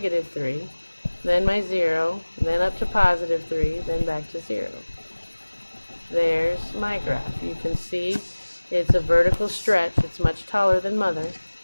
Then my 0, then up to +3, then back to 0. There's my graph. You can see it's a vertical stretch. It's much taller than mother,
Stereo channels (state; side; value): inverted; both; correlation -1.00